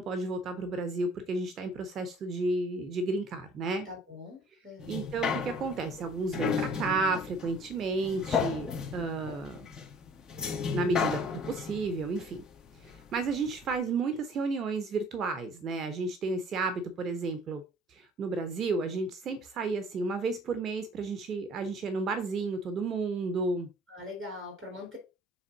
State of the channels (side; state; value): both; normal; correlation 0.53